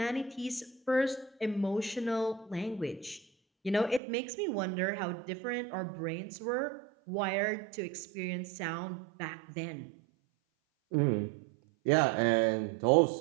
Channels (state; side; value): drops out; left; at 4.0 s